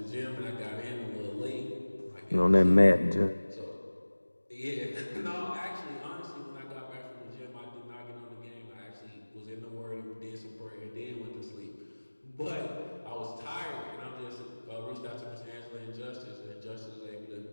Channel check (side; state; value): both; inverted; correlation -1.00